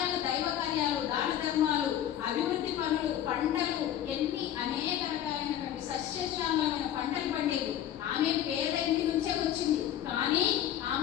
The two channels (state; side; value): quieter; right; 11.1 dB